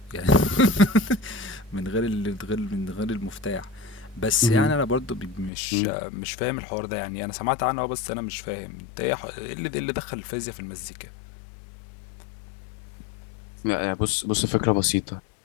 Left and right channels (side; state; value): right; drops out; at 5.5 s